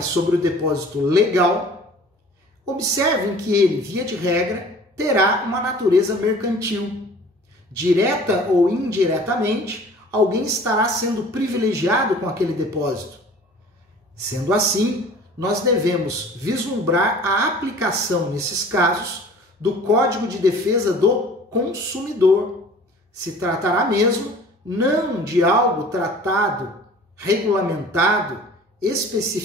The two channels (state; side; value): normal; both; correlation 0.47